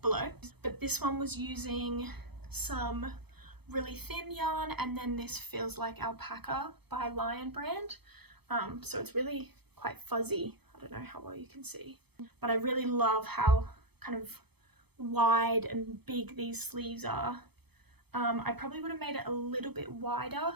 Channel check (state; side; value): late; left; 0.98 ms